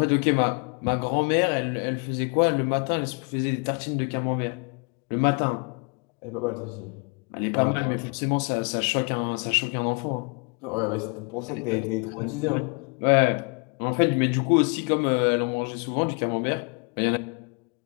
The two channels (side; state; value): right; quieter; 35.9 dB